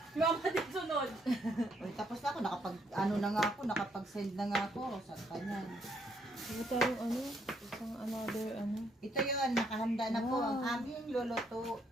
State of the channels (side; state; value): both; normal; correlation 0.72